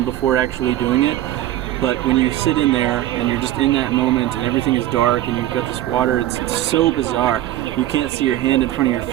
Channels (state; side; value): quieter; left; 13.9 dB